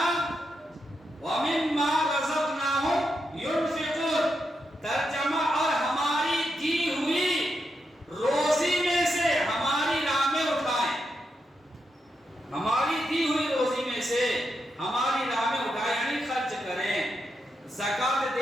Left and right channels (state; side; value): normal; both; correlation 0.84